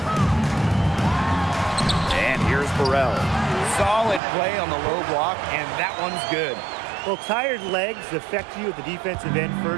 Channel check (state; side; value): drops out; left; at 4.2 s